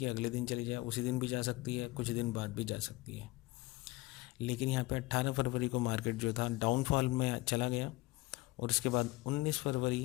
अगले दिन चली जाए, उसी दिन भी जा सकती है, कुछ दिन बाद भी जा सकती है। लेकिन यहाँ पे 18 फरवरी को मार्केट जो था डाउनफॉल में चला गया, और उसके बाद 19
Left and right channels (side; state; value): right; quieter; 19.8 dB